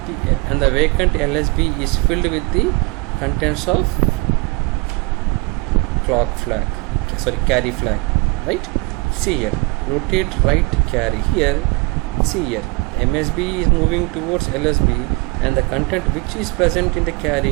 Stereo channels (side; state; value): left; quieter; 26.5 dB